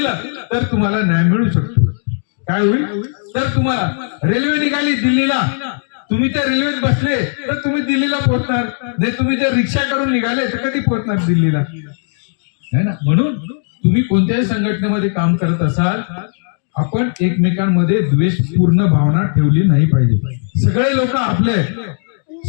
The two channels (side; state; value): right; silent; digital silence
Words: तर तुम्हाला न्याय मिळू शकतो. काय होईल? तर तुम्हाला रेल्वे निघाली दिल्लीला, तुम्ही त्या रेल्वेत बसले तर तुम्ही दिल्लीला पोहोचणार नाही. तुम्ही जर रिक्षा करून निघाले तर कधी पोहोचणार दिल्लीला? है ना? म्हणून तुम्ही कोणत्याही संघटनेमध्ये काम करत असाल, आपण एकमेकांमध्ये द्वेषपूर्ण भावना ठेवली नाही पाहिजे. सगळे लोक आपले